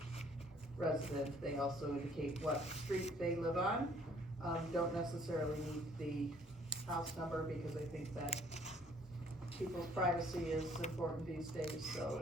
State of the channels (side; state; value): both; normal; correlation 0.60